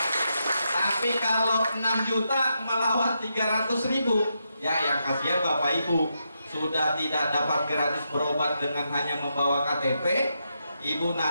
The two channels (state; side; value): inverted; both; correlation -0.83